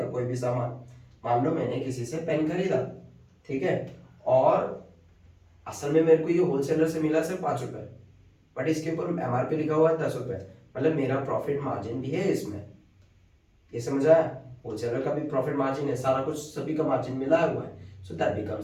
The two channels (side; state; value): both; identical; correlation 1.00